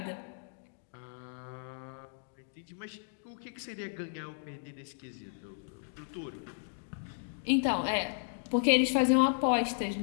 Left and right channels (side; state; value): right; silent; digital silence